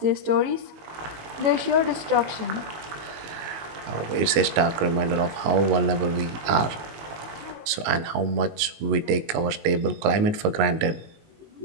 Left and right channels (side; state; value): left; late; 19 ms